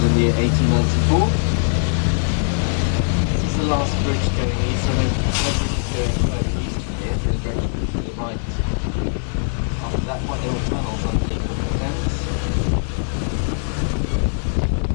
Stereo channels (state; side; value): silent; right; digital silence